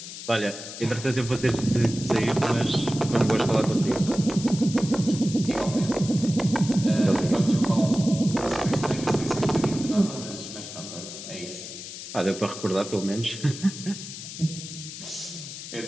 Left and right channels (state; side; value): noise; left; hiss, 11 dB below the sound